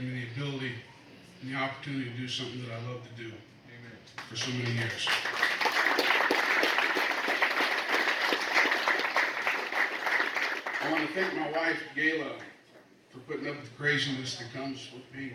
me the ability and the opportunity to do something that I love to do. Amen. For so many years. I want to thank my wife, Gayla, for putting up with the craziness that comes with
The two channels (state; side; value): identical; both; correlation 1.00